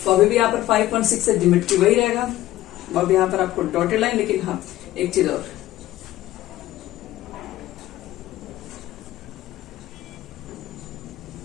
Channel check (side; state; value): right; quieter; 15.2 dB